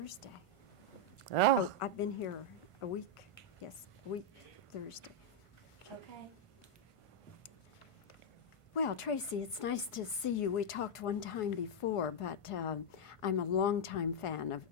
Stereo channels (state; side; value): late; right; 1.5 ms